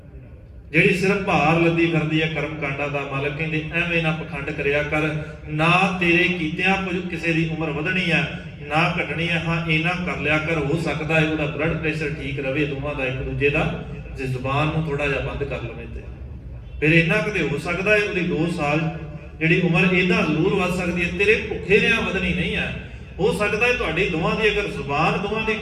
ਜਿਹੜੀ ਸਿਰਫ ਭਾਰ ਲੱਦੀ ਫਿਰਦੀ ਹੈ ਕਰਮ ਕਾਂਡਾਂ ਦਾ। ਮਾਲਕ ਕਹਿੰਦੇ ਐਵੇਂ ਨਾ ਪਖੰਡ ਕਰਿਆ ਕਰ, ਨਾ ਤੇਰੇ ਕੀਤਿਆਂ ਕੁਝ ਕਿਸੇ ਦੀ ਉਮਰ ਵਧਣੀ ਹੈ ਨਾ ਘਟਣੀ ਹੈ। ਹਾਂ, ਇਹਨਾਂ ਕਰ ਲਿਆ ਕਰ, ਹੋ ਸਕਦਾ ਹੈ ਉਹਦਾ ਬਲੱਡ ਪ੍ਰੈਸ਼ਰ ਠੀਕ ਰਵੇ ਦੋਵਾਂ ਦਾ, ਇੱਕ ਦੂਜੇ ਦਾ, ਜੇ ਜ਼ੁਬਾਨ ਨੂੰ ਥੋੜਾ ਜਿਹਾ ਬੰਦ ਕਰ ਲਵੇ ਤੇ ਫਿਰ ਇੰਨਾ ਕਦੇ ਹੋ ਸਕਦਾ ਹੈ ਉਹਦੀ 2 ਸਾਲ ਜਿਹੜੀ ਉਮਰ ਇਹਦਾ ਜ਼ਰੂਰ ਵੱਧ ਸਕਦੀ ਹੈ, ਤੇਰੇ ਭੁੱਖੇ ਰਿਆਂ ਵਧਣੀ ਨਹੀਂ ਹੈ। ਹੋ ਸਕਦਾ ਹੈ ਤੁਹਾਡੀ ਦੋਵਾਂ ਦੀ ਅਗਰ ਜ਼ੁਬਾਨ ਦੋਵਾਂ ਦੀ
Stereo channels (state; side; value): identical; both; correlation 1.00